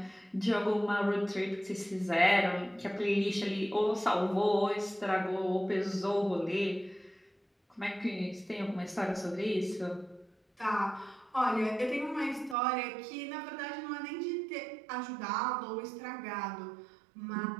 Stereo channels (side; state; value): left; drops out; at 12.6 s